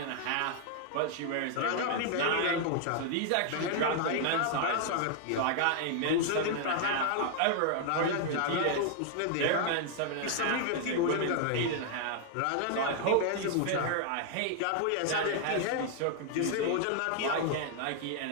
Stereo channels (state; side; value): different; both; correlation 0.00